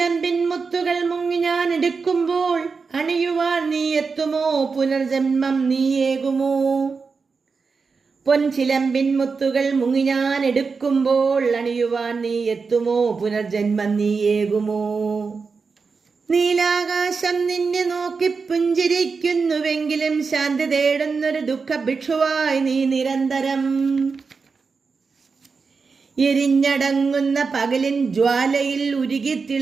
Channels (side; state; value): left; quieter; 4.9 dB